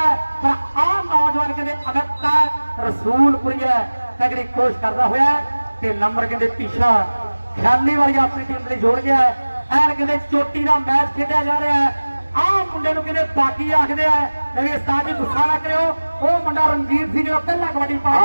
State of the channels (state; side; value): inverted; both; correlation -1.00